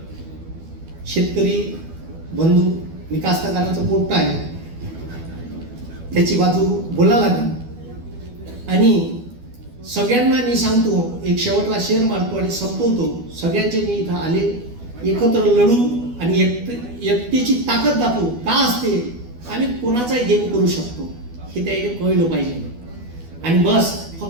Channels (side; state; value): left; late; 12 ms